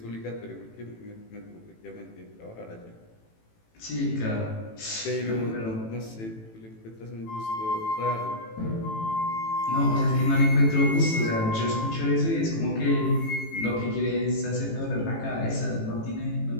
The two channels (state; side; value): late; right; 18 ms